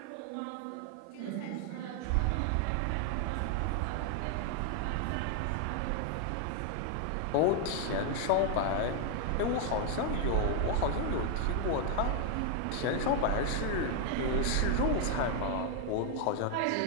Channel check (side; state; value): both; different; correlation 0.00